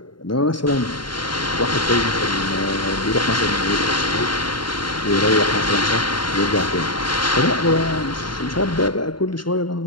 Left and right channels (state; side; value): late; right; 0.72 ms